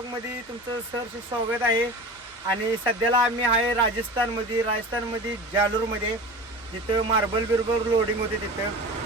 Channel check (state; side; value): normal; both; correlation 0.34